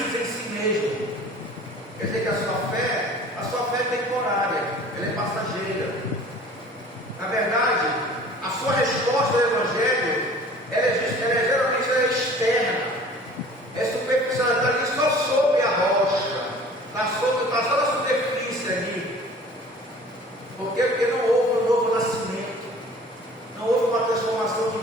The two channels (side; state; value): both; normal; correlation 0.46